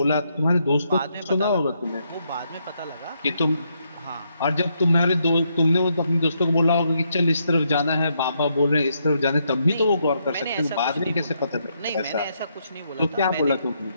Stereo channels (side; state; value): both; inverted; correlation -0.77